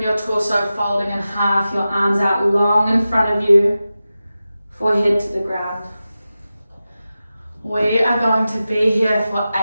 your torso folding in half, your arms out long in front of you, forehead to the ground. We are going to be here for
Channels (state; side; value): inverted; both; correlation -0.94